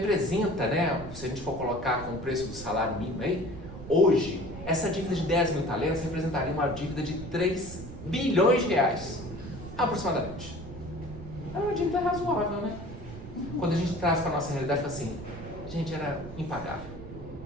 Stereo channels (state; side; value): noise; right; rumble, 12 dB below the sound